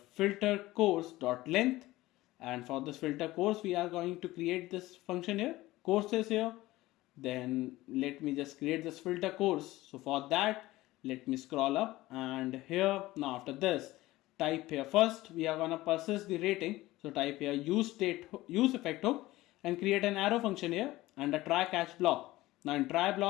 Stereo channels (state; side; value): quieter; right; 17.8 dB